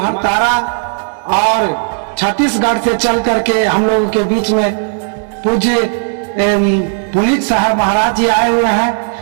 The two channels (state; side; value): silent; left; digital silence